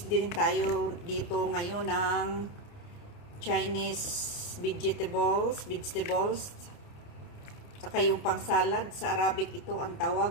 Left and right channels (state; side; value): late; right; 29 ms